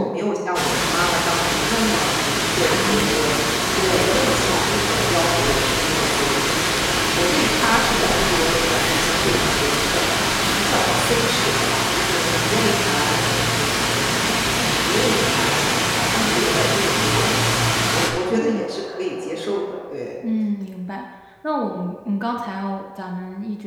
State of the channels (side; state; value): both; identical; correlation 1.00